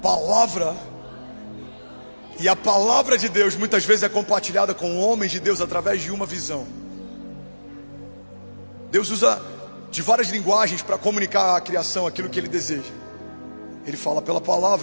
palavra. E a palavra de Deus muitas vezes é compartilhada com homens de Deus através de uma visão. Deus usa de várias linguagens para comunicar à criação aquilo que Ele deseja. Ele fala pela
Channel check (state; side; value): inverted; both; correlation -1.00